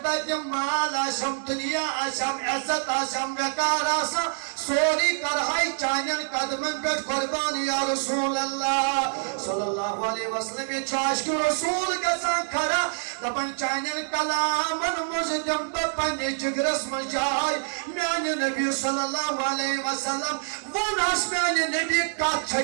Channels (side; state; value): left; silent; digital silence